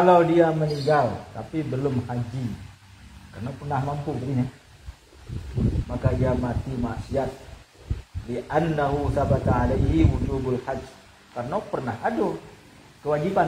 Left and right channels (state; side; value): identical; both; correlation 1.00